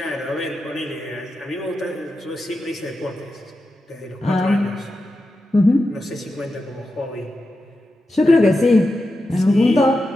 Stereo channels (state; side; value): normal; both; correlation 0.90